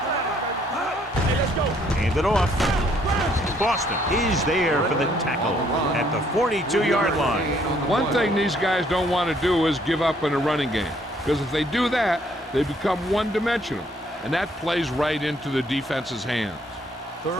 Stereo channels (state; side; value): normal; both; correlation 0.66